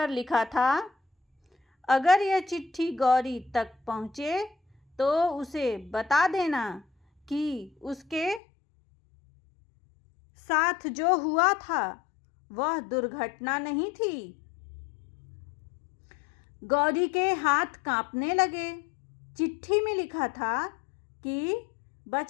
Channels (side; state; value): right; drops out; at 8.4 s